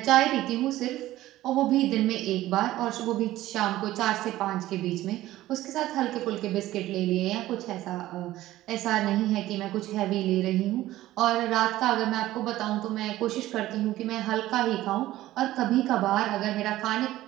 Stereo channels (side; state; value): left; quieter; 15.4 dB